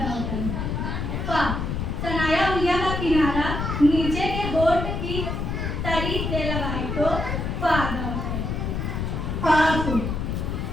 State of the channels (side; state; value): left; noise; rumble, 2 dB below the sound